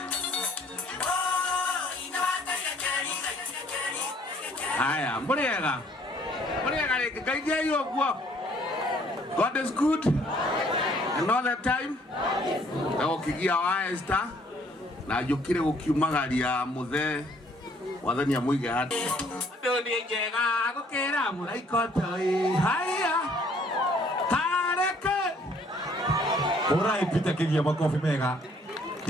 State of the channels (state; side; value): normal; both; correlation 0.61